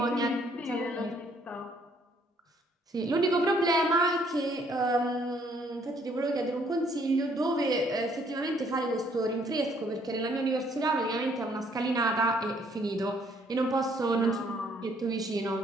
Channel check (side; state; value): both; normal; correlation 0.65